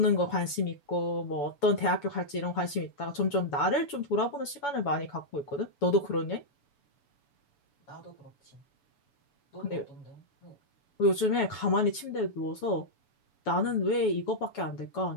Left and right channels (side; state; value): right; late; 7.0 ms